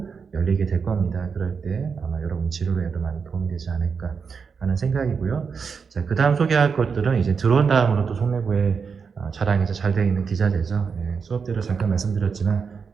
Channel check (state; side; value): quieter; left; 5.8 dB